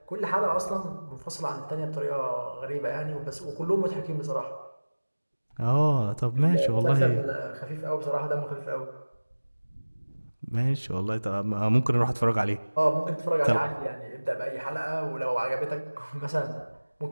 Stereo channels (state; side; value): inverted; both; correlation -1.00